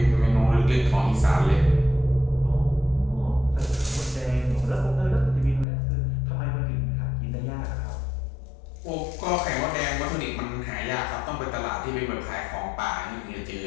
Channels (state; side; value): drops out; right; at 5.7 s